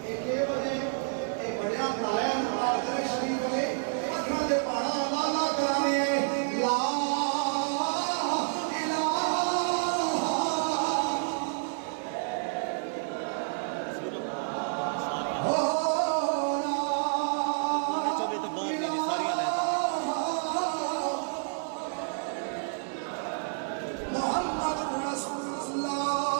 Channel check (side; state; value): left; silent; 58 dB below the other